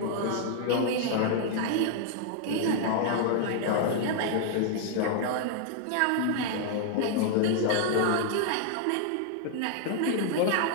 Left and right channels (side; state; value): both; different; correlation 0.00